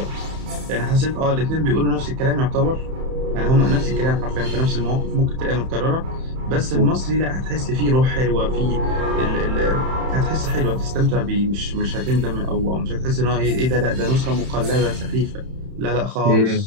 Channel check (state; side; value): late; left; 31 ms